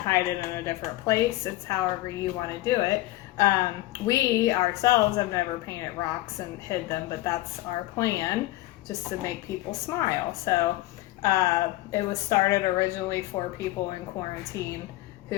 hide it in a different place. It's however you want to do it. We ourselves have never painted rocks and hid them, but that's our plan, just to make people smile. So it was started originally for people in quarantine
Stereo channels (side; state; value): right; quieter; 17.4 dB